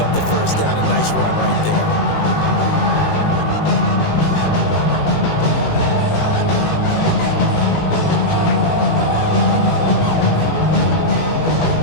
up the 1st down. A nice run right there.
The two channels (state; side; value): late; right; 18 ms